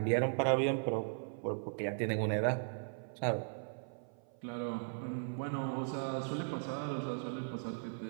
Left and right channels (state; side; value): silent; left; 53 dB below the other